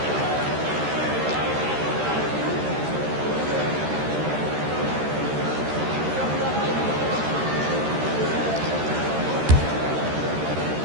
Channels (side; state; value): left; late; 13 ms